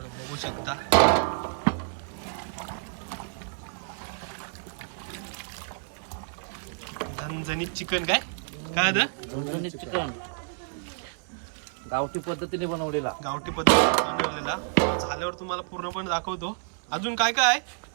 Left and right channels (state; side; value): silent; left; 59 dB below the other